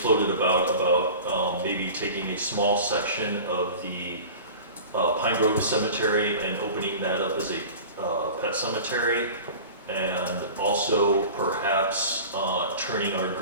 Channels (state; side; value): inverted; both; correlation -0.38